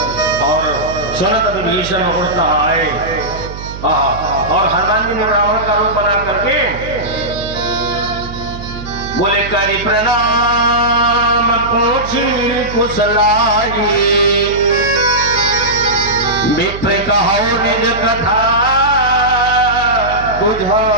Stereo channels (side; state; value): right; noise; hum, 11 dB below the sound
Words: और सुनत विभीषण उड़ता आए। और हनुमान जी ने ब्राह्मण का रूप बना करके बोले करी प्रणाम पूछी कुशलाई, विप्र कहो निज कथा